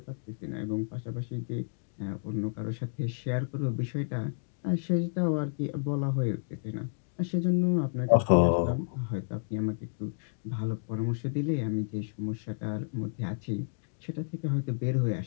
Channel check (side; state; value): right; silent; digital silence